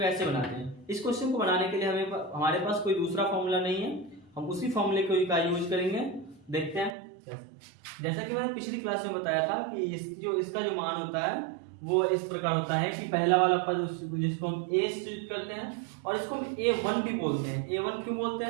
ऐसे बनाते हैं। इस क्वेश्चन को बनाने के लिए हमारे पास कोई दूसरा फॉर्मूला नहीं है, हम उसी फॉर्मूले का यूज करेंगे। देखते हैं जैसा कि मैंने पिछली क्लास में बताया था कि इसका जो मान होता है वो इस प्रकार होता है कि पहला वाला पद जिसको हम ए सूचित करते हैं और इसको हम A1 भी बोलते हैं। A1 क्यों बोलते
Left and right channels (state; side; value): drops out; left; at 6.9 s